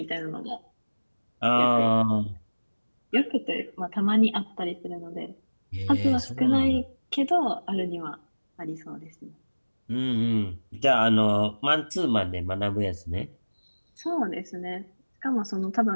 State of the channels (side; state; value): both; inverted; correlation -1.00